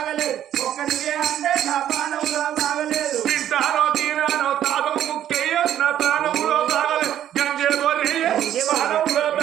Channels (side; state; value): left; quieter; 11.1 dB